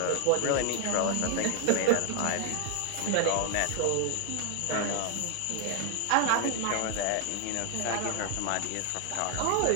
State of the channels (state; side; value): different; both; correlation 0.00